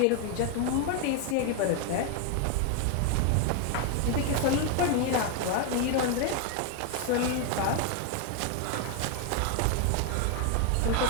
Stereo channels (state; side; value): different; both; correlation 0.01